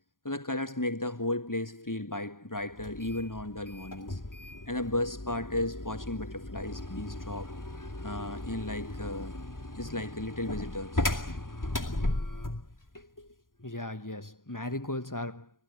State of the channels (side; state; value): right; late; 0.90 ms